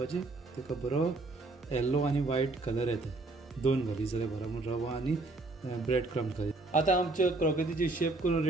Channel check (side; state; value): left; quieter; 3.2 dB